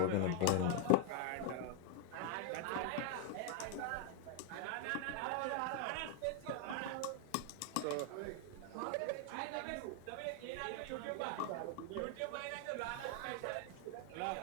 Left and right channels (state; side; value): different; both; correlation 0.00